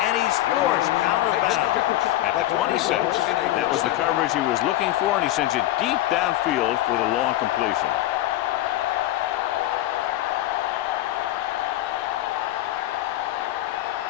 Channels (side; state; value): right; quieter; 15.0 dB